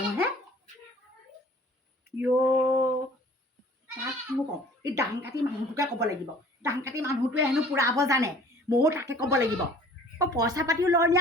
হে তাক মোক কওঁ এই দাং কাটি মানুহটোকে ক'ব লাগিব দাং কাটি মানুহটোৱে হেনো পুৰাব জানে ময়ো তাকে ক'ব লাগিব পইচা পাতিও লয় নি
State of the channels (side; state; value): both; normal; correlation 0.51